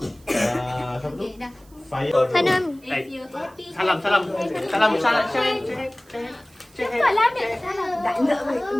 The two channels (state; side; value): noise; right; hiss, 29 dB below the sound